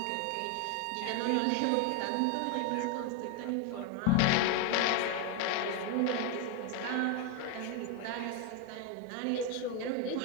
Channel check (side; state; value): both; different; correlation 0.02